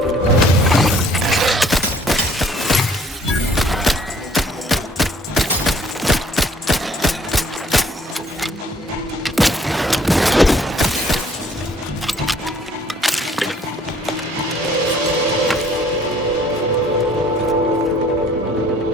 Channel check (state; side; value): normal; both; correlation 0.59